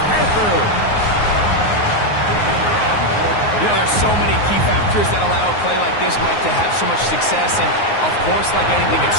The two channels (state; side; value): late; right; 9.6 ms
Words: Panthers. You know, there's so many key factors that allow a play like this, Mike, to have so much success. And, of course, like anything, it